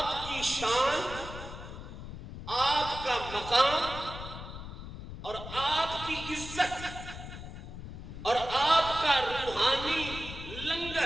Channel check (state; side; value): noise; left; rumble, 10 dB below the sound